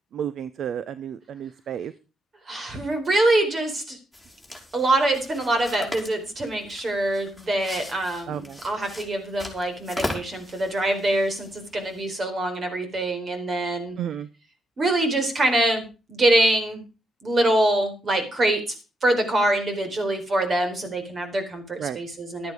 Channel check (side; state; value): both; normal; correlation 0.80